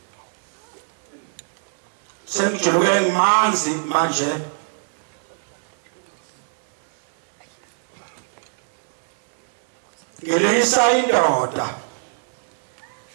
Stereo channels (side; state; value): left; silent; 60 dB below the other